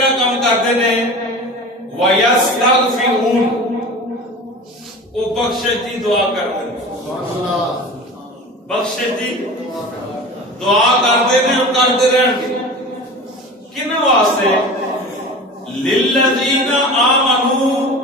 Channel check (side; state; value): both; normal; correlation 0.35